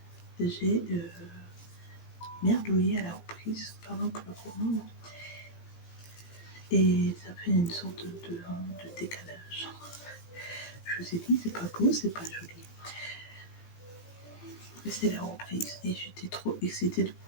j'ai merdouillé à la reprise, pardon pour le courant. Et ça fait une sorte de décalage. Je vous ai dit, c'est pas beau, c'est pas joli. Mais c'est la reprise. Et j'étais trop excitée de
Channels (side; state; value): right; late; 17 ms